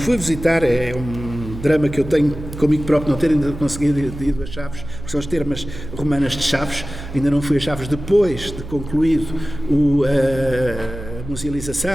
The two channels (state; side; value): noise; right; hum, 11 dB below the sound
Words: visitar, é um drama que eu tenho comigo próprio não ter ainda conseguido ir a Chaves, porque são as termas romanas de Chaves. Ainda não fui a Chaves depois de concluído a